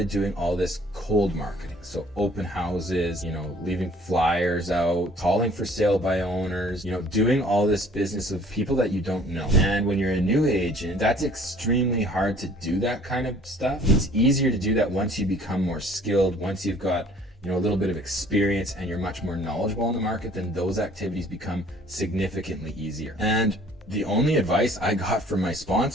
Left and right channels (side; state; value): both; normal; correlation 0.55